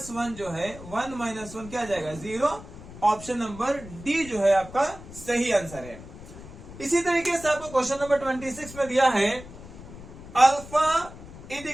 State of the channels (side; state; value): left; noise; rumble, 15 dB below the sound